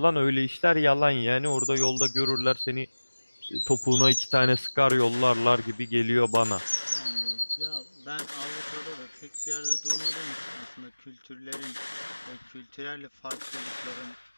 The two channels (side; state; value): both; inverted; correlation -1.00